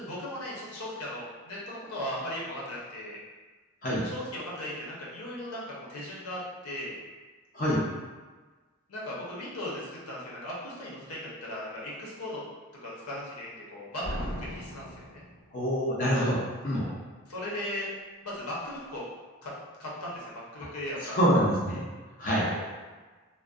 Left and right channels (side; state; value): both; normal; correlation 0.37